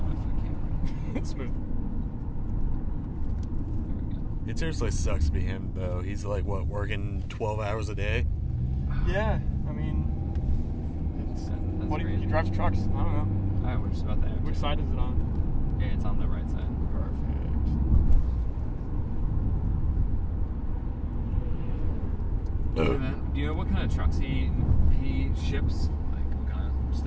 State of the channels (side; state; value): both; identical; correlation 1.00